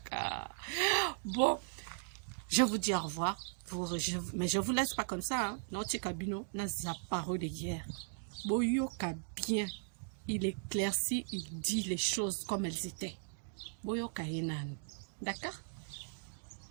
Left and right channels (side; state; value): left; silent; digital silence